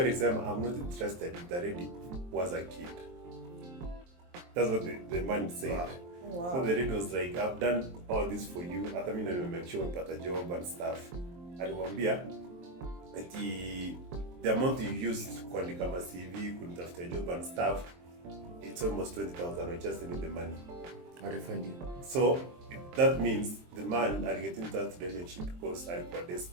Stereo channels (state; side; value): late; left; 23 ms